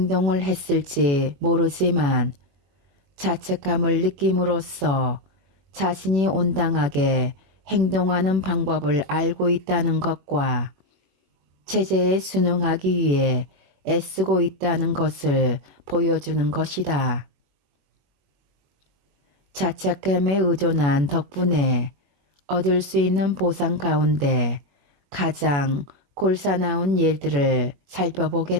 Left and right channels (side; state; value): left; late; 21 ms